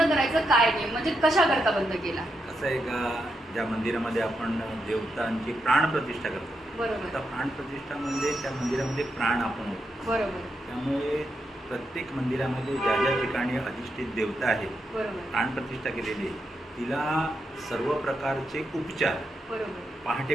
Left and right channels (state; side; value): normal; both; correlation 0.84